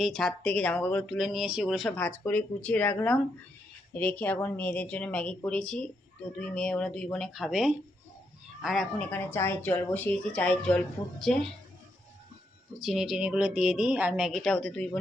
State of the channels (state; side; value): normal; both; correlation 0.79